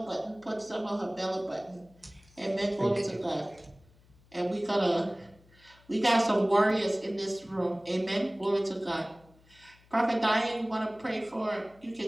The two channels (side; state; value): left; noise; hum, 28 dB below the sound